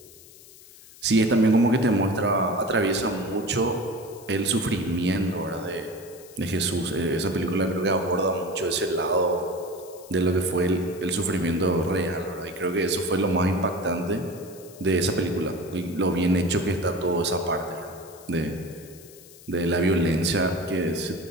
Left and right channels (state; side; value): noise; left; hiss, 21 dB below the sound